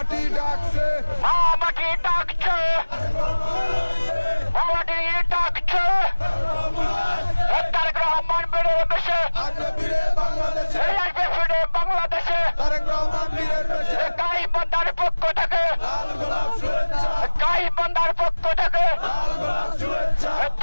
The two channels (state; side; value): inverted; both; correlation -1.00